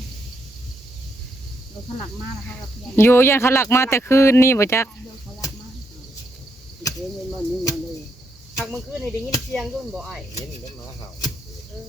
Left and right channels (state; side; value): normal; both; correlation 0.78